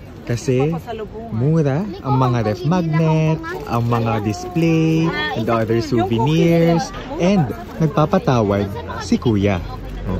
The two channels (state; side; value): identical; both; correlation 1.00